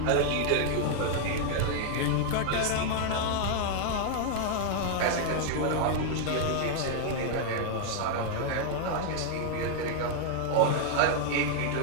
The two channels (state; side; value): different; both; correlation 0.00